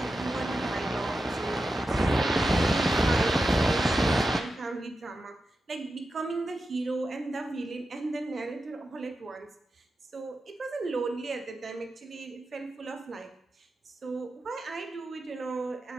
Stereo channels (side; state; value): both; normal; correlation 0.90